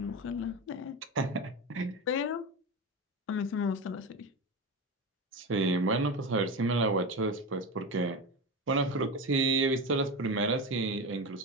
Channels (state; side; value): normal; both; correlation 0.22